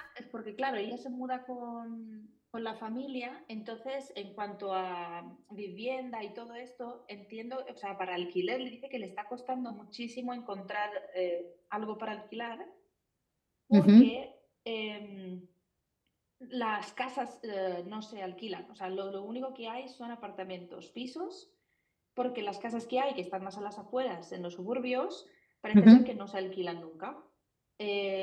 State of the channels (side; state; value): both; identical; correlation 1.00